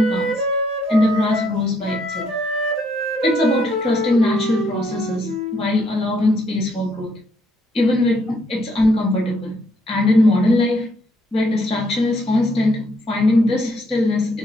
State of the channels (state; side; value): normal; both; correlation 0.71